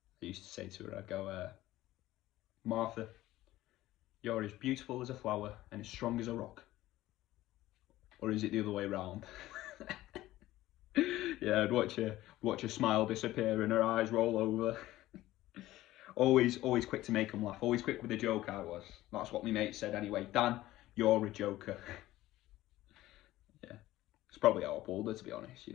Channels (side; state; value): right; quieter; 15.9 dB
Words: I used to say to her, I'd go, Martha, you're as beautiful as a flower and as strong as a rock. Or is it the other way round? Yeah, I'd watch her smile disappear and her eyes roll over. Always quick to make them laugh. Always quick with a joke. I was. That's what my mate said anyway. Dan, you're a joker. Yeah, it's probably how I pulled her, to be honest.